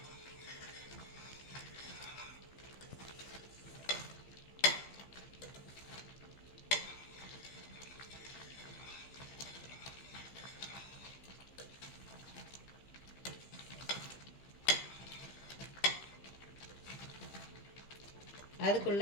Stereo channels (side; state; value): right; late; 15 ms